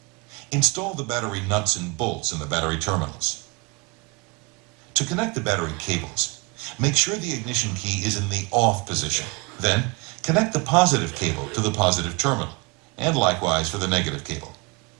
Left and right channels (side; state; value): left; quieter; 27.8 dB